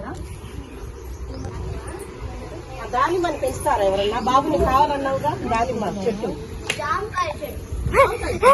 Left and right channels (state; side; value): identical; both; correlation 1.00